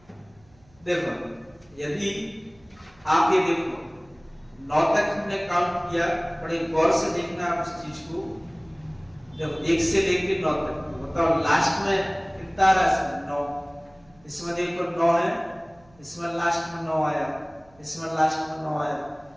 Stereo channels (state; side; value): noise; right; hum, 30 dB below the sound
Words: देखो यदि आप ये देखो 9 तक हमने काउंट किया, बड़े गौर से देखना आप इस चीज को। देखो 1 से लेके 9 तक बताओ लास्ट में कितना आ रहा है, 9। इसमें देखो 9 है, इसमें लास्ट में 9 आया, इसमें लास्ट में 9 आया।